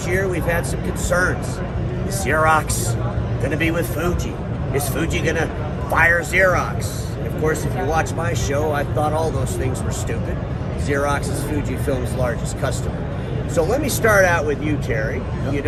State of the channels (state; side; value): identical; both; correlation 1.00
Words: year, we've had some concerns. Is Xerox going to be with Fuji? Is Fuji going to fire Xerox? And of course, if you watch my show, I thought all those things were stupid. Xerox is FujiFilm's largest customer. So let me start out with you, Terry. Yep. You